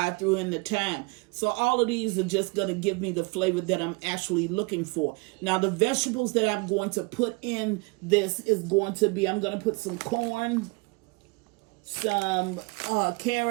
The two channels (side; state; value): left; quieter; 27.9 dB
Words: I threw in the thyme. So all of these are just going to give me the flavor that I'm actually looking for. Now the vegetables that I'm going to put in this is going to be, I'm going to put some corn, some